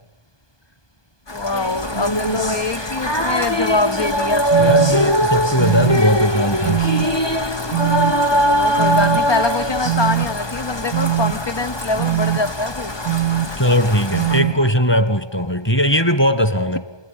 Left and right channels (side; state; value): right; late; 1.2 ms